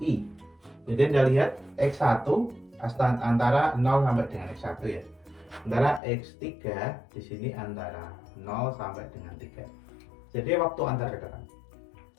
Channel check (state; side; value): drops out; right; at 6.0 s